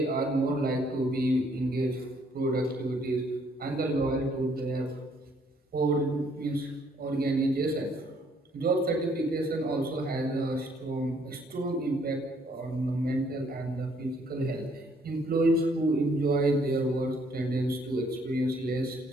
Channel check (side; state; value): both; normal; correlation 0.66